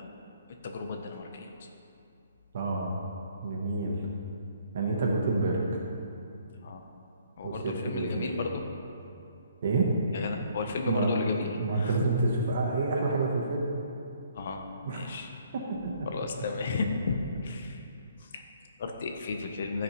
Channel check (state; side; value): inverted; both; correlation -0.63